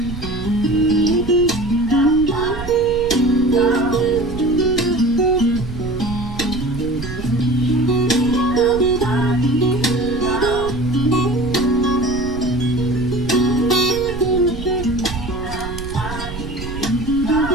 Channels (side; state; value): right; noise; rumble, 10 dB below the sound